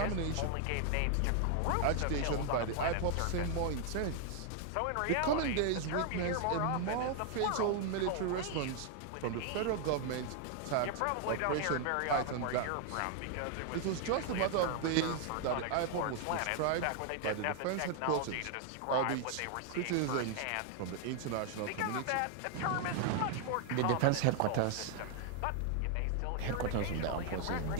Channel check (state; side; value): different; both; correlation 0.00